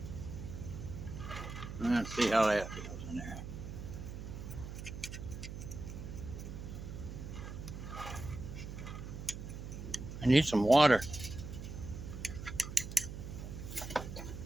Let's see how that feels in there. I need some water.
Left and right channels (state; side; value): noise; right; hum, 8 dB below the sound